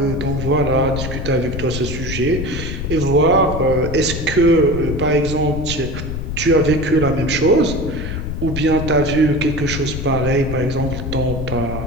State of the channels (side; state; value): left; noise; rumble, 5 dB below the sound